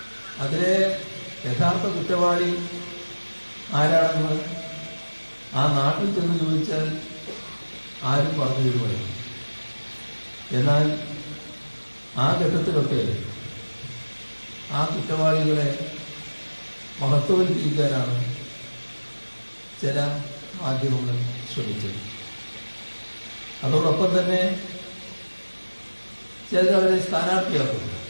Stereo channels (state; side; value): inverted; both; correlation -1.00